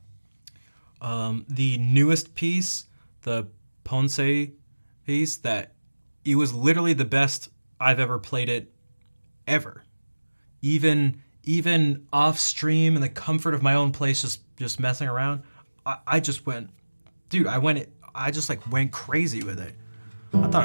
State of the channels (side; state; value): both; inverted; correlation -1.00